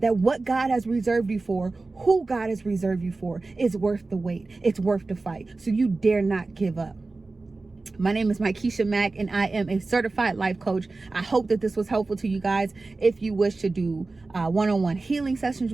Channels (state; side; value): quieter; left; 3.5 dB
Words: what God has reserved you for, who God has reserved you for, is worth the wait. It's worth the fight. So you dare not give up. My name is Mykesha Mack, and I am a certified life coach. I hope that this was helpful to you guys. If you wish to do one-on-one healing sessions